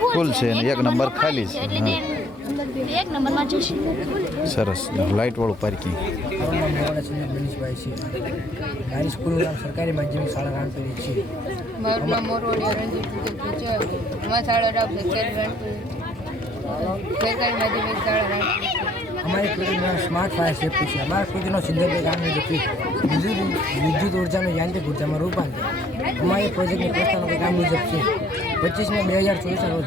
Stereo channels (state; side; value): normal; both; correlation 0.62